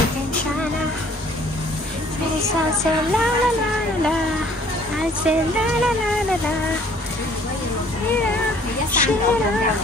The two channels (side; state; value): both; normal; correlation 0.57